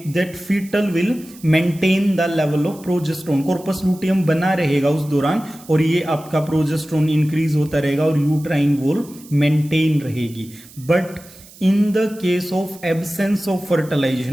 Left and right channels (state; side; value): noise; right; hiss, 21 dB below the sound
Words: that fetal will maintain the level of progesterone. Corpus luteum बना रहेगा उस दौरान और ये आपका प्रोजेस्टेरोन इंक्रीज होता रहेगा और यूट्राइन वॉल मेंटेन रहेगी। But in the case of absence of